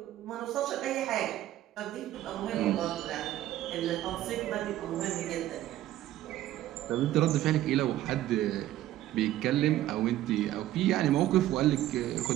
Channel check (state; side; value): quieter; left; 13.9 dB